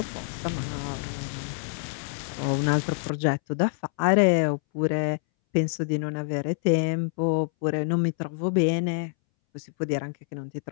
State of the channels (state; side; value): silent; right; 61 dB below the other